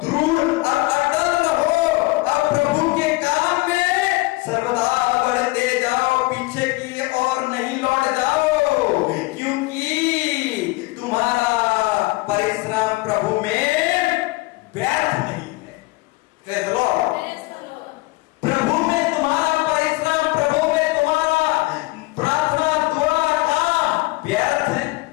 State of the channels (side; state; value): right; quieter; 22.6 dB